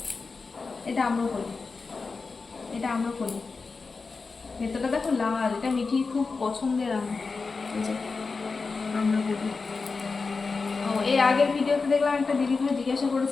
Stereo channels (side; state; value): right; quieter; 4.4 dB